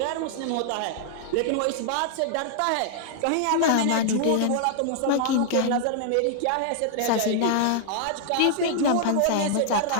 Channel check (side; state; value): both; different; correlation -0.01